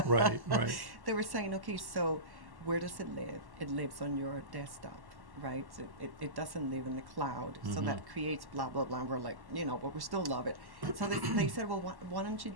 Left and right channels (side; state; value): left; late; 1.1 ms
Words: Right, right. They were saying, okay, so where does it live? It lives on your desktop, right? So it doesn't live in the cloud. So Mhm. that creates blah, blah, blah. And we're like, but we still love it. So they said, well, why don't you